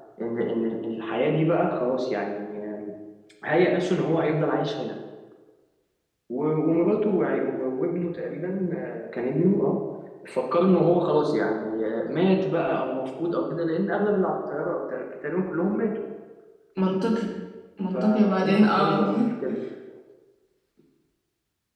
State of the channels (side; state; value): both; identical; correlation 1.00